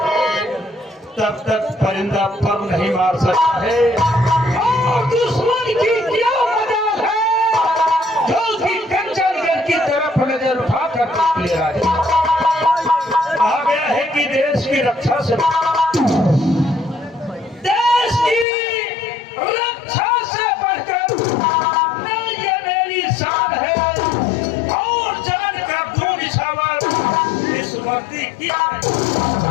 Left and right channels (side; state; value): right; drops out; at 18.4 s